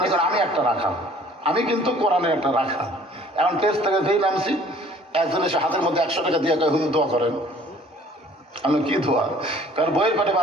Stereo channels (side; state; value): both; normal; correlation 0.54